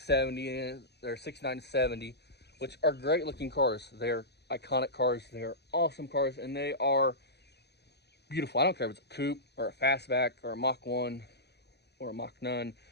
they're 69 to 70, which are great looking cars. They're iconic cars. They're awesome cars, and they are beautiful. I don't care if it's a coupe or a fastback or a Mach 1 or a Mach 9.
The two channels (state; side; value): late; right; 0.48 ms